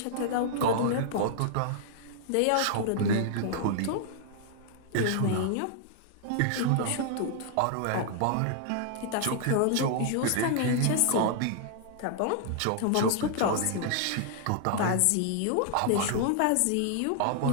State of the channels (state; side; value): different; both; correlation -0.01